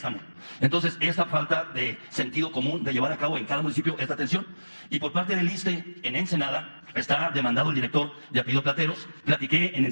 Entonces, esta falta de sentido común de llevar a cabo en cada municipio esta atención. Y por parte del ISSSTE, en Ensenada, está demandado el director de apellido Plateros. Platiqué en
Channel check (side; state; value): both; inverted; correlation -1.00